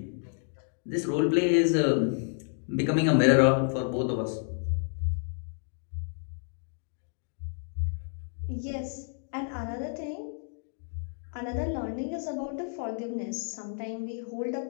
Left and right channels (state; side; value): silent; right; digital silence